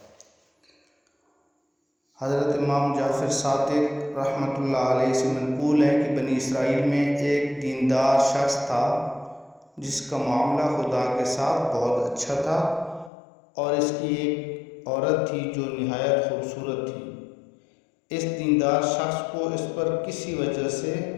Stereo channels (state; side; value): drops out; right; at 13.1 s